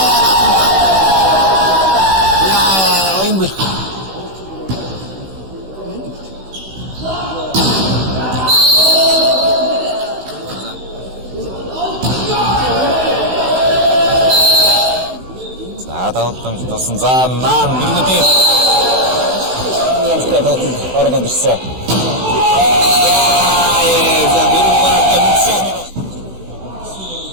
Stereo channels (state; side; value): late; left; 16 ms